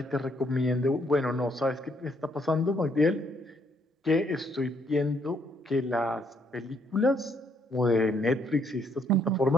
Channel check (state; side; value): normal; both; correlation 0.70